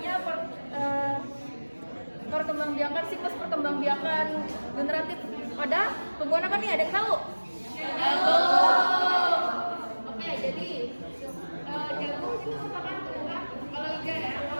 perkembangbiakan, siklus perkembangbiakan generatif pada tumbuhan apa nih? Ada yang tahu? Oke, jadi jagung itu merupakan tumbuhan kalau iga ya,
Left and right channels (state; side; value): inverted; both; correlation -1.00